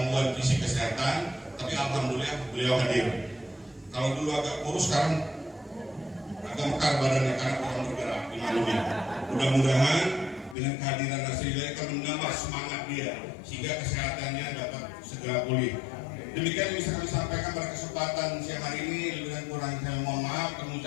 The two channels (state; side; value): drops out; right; at 10.6 s